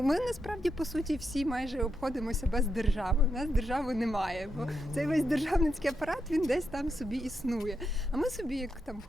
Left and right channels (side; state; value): both; normal; correlation 0.83